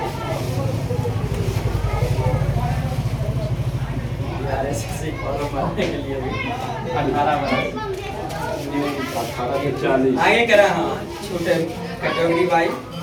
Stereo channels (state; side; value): identical; both; correlation 1.00